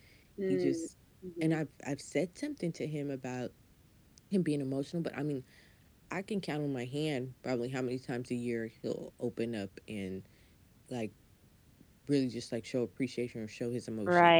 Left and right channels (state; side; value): identical; both; correlation 1.00